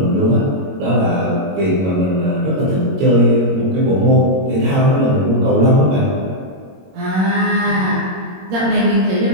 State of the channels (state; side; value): late; left; 22 ms